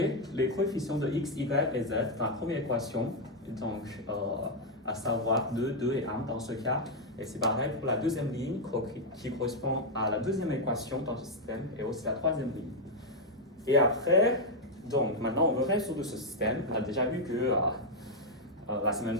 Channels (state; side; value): normal; both; correlation 0.00